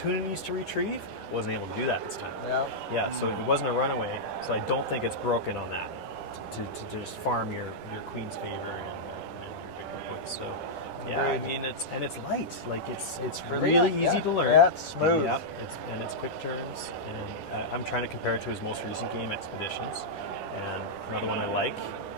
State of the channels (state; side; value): late; right; 10 ms